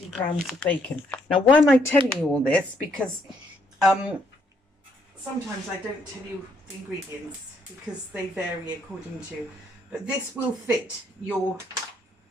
grams of bacon. Now, why am I telling you all this? Because sometimes I don't tell you the ingredients because they vary according to, but this will fit your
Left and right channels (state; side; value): normal; both; correlation 0.70